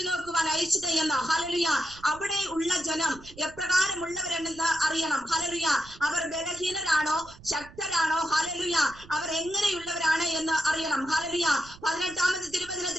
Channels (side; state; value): right; noise; rumble, 21 dB below the sound